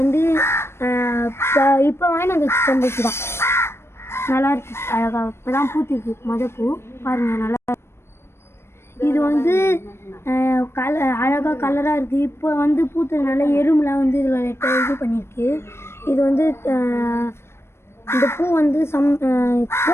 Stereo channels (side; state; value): right; late; 0.12 ms